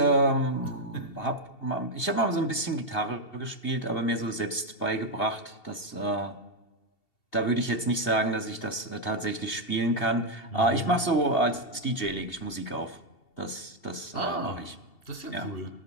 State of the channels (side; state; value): right; late; 2.7 ms